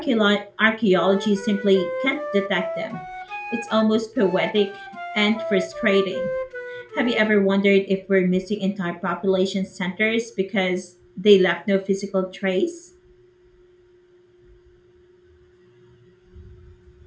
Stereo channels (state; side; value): identical; both; correlation 1.00